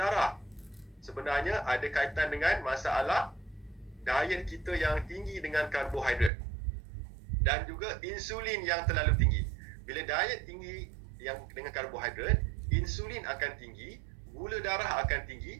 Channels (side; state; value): left; drops out; at 6.3 s